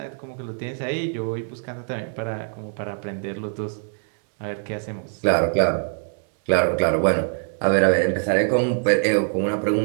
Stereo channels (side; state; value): left; silent; 60 dB below the other